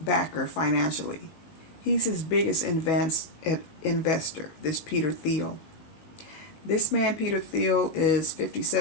backer financially. He's his biggest investor, this Peter Thiel. This man, Peter Thiel, is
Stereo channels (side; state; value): right; late; 19 ms